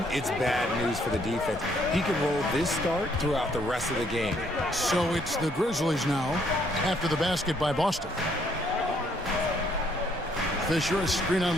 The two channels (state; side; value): normal; both; correlation 0.68